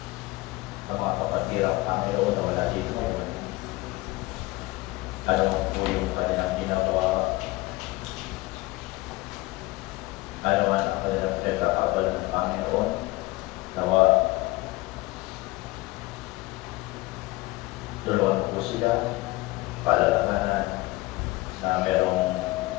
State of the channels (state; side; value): quieter; right; 20.7 dB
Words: Ang mga kapatid Panginoon na wala dito ngayon, ano po yung kanilang ginagawa, ano man ang kanilang pinagkakabal ng Panginoon, nawa tulungan po sila, palalabanan na merong